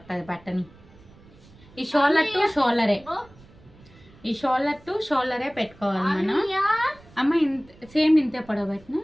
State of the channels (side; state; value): right; noise; rumble, 25 dB below the sound